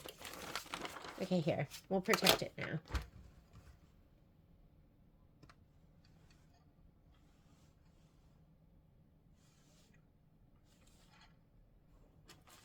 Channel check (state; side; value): identical; both; correlation 1.00